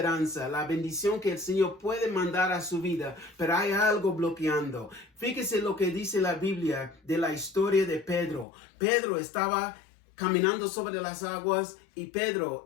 la bendición que el Señor puede mandar a su vida, pero hay algo bloqueando. Fíjese lo que dice la Biblia de la historia de Pedro. Pedro estaba caminando sobre las aguas y Pedro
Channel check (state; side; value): drops out; right; at 8.5 s